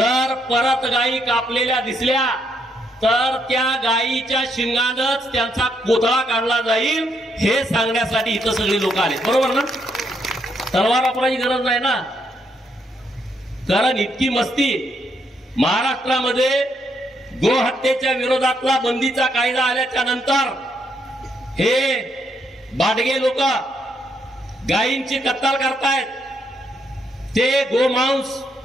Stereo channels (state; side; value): normal; both; correlation 0.76